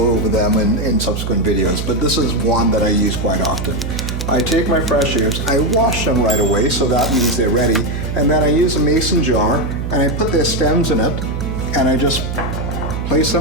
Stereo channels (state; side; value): noise; right; hum, 4 dB below the sound